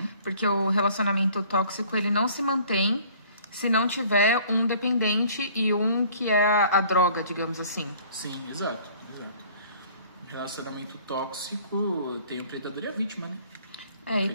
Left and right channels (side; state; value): both; inverted; correlation -0.54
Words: Porque o relacionamento tóxico, ele não se mantém se não tiver um dependente e um que é a droga, digamos assim. Sim, exato. Relacionamento tóxico tem o predador e a vítima, né? E